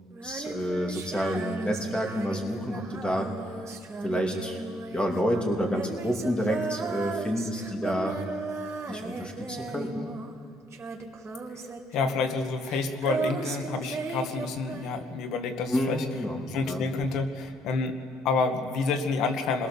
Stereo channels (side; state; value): both; normal; correlation 0.69